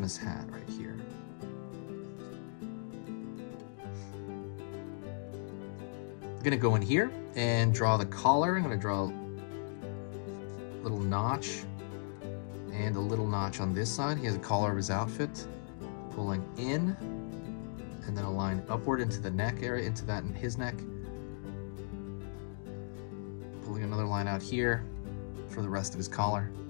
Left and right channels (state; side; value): silent; right; digital silence